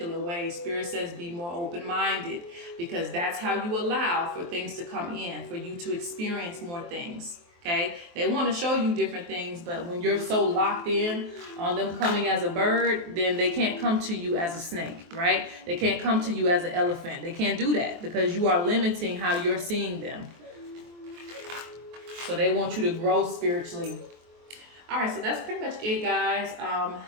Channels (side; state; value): left; late; 23 ms